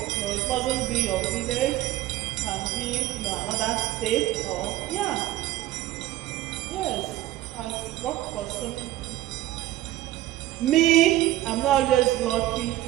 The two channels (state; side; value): quieter; left; 15.2 dB